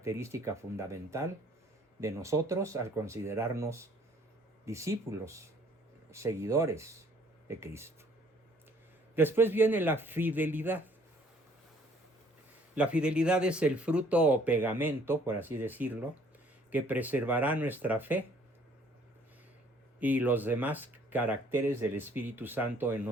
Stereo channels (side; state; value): both; normal; correlation 0.59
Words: fundamental de nosotros al considerarnos discípulos, seguidores de Cristo. Después viene la fidelidad. La fidelidad es el fruto o pegamento, por así decirlo, que preservará nuestra fe y los demás caracteres del Espíritu Santo en